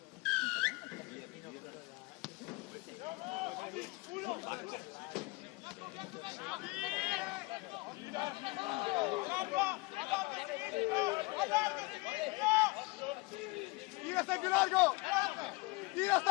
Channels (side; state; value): right; quieter; 24.8 dB